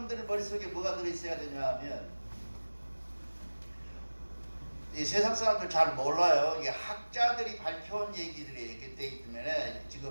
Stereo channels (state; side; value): inverted; both; correlation -1.00